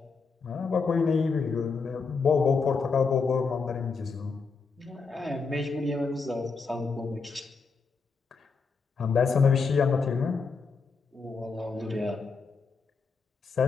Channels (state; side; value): quieter; right; 4.8 dB